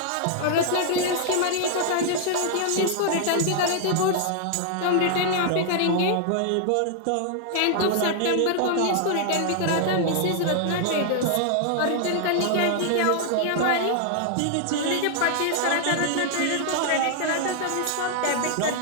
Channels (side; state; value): both; different; correlation 0.00